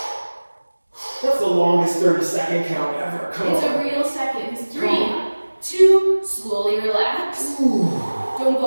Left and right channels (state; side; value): inverted; both; correlation -1.00